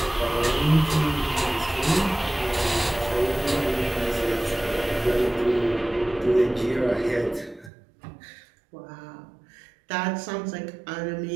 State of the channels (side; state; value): left; drops out; at 7.7 s